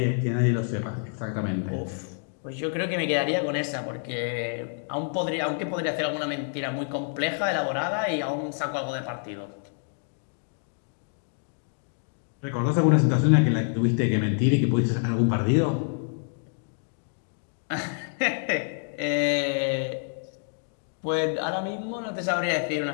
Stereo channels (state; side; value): silent; right; 60 dB below the other